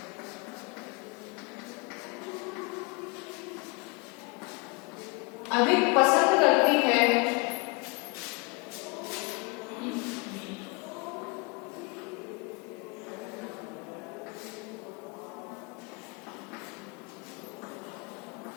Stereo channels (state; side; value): quieter; right; 28.8 dB